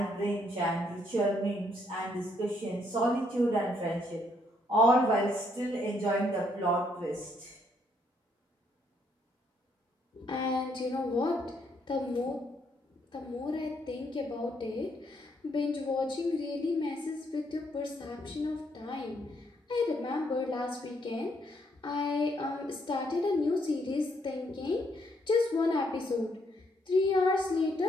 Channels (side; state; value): both; normal; correlation 0.72